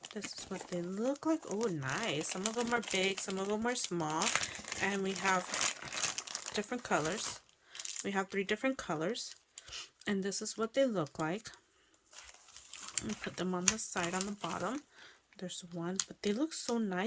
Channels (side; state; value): both; identical; correlation 1.00